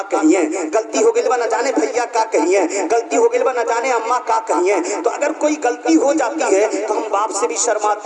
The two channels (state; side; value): identical; both; correlation 1.00